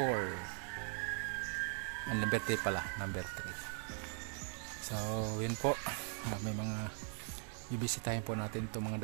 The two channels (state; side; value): silent; left; 51 dB below the other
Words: Number 3 pala, number 3. So, yun po. May mga ibisitahin po natin itong